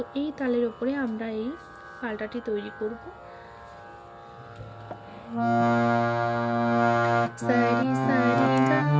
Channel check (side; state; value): both; identical; correlation 1.00